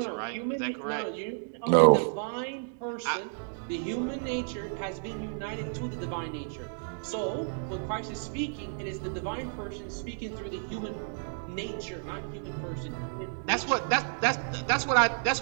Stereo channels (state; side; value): silent; left; digital silence